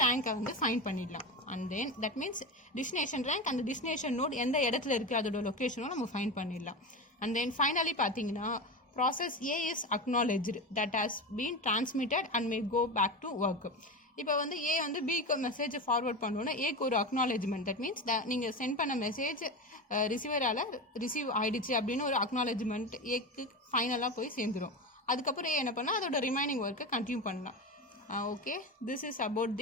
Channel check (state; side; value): normal; both; correlation 0.22